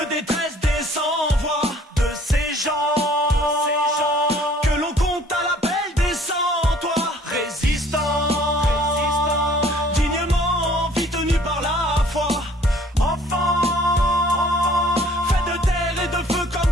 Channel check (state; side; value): normal; both; correlation 0.56